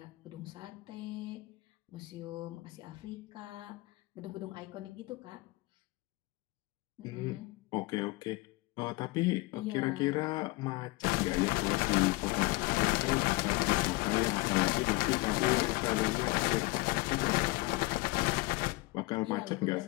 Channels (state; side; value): quieter; right; 22.9 dB